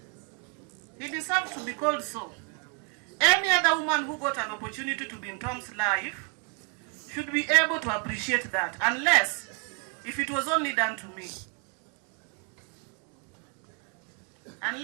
He deserves to be called so. Any other woman who got an opportunity to be in Tom's life should be able to appreciate that, unless if it was only done to me.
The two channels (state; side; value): quieter; left; 35.7 dB